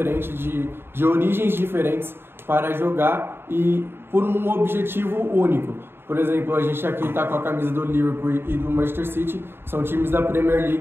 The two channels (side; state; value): left; late; 0.11 ms